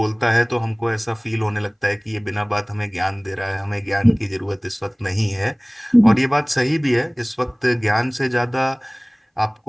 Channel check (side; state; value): both; identical; correlation 1.00